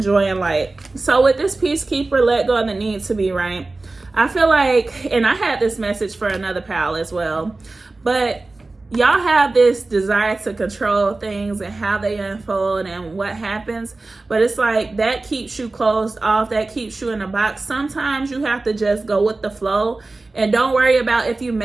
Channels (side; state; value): left; quieter; 3.3 dB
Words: Joy and Light. So with this Peacekeeper, let go of the need to be right. I feel like, and I had this message for another pal as well, but y'all have this desire to control things and how they unfold and what happens. But it's like that keeps you closed off. That keeps you in a box. Sometimes you have to just go with the flow and don't worry about if you're